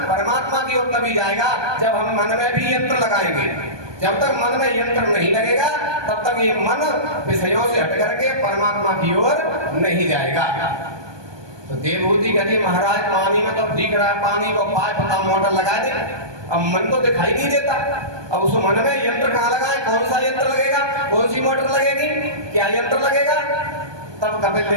परमात्मा की ओर तभी जाएगा जब हम मन में भी यंत्र लगाएंगे। जब तक मन में यंत्र नहीं लगेगा तब तक ये मन विषयों से हट करके परमात्मा की ओर नहीं जाएगा। तो देवभूति कहती महाराज पानी में तो दिख रहा है, पानी को पाए पता मोटर लगा दे, अब मन तो दिखाई नहीं देता। अब उस मन में यंत्र कहाँ लगाए? कौन सा यंत्र लगेगा? कौन सी मोटर लगेगी? क्या यंत्र लगेगा? तब कपिल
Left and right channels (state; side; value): late; left; 1.2 ms